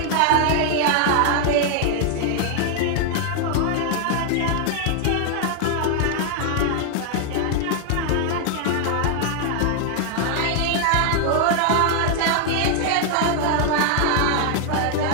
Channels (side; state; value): both; different; correlation 0.00